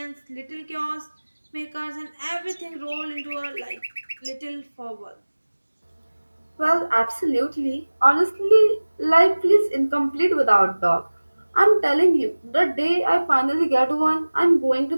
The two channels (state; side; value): inverted; both; correlation -1.00